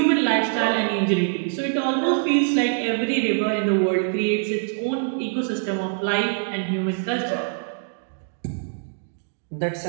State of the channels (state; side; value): silent; left; digital silence